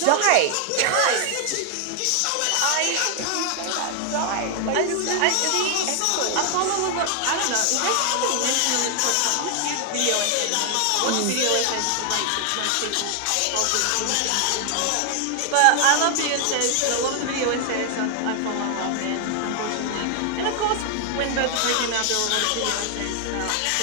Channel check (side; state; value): both; different; correlation 0.00